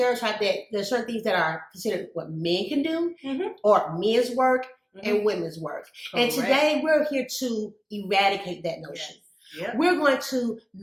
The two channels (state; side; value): identical; both; correlation 1.00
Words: that there's certain things that are considered what men can do, or men's work and women's work. Correct. And today we're here to eradicate that notion. Yes. Yep. We're going to